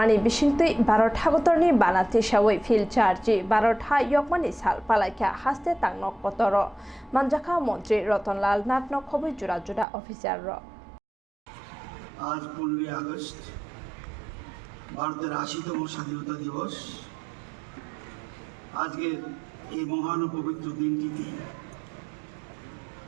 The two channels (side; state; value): left; drops out; at 9.9 s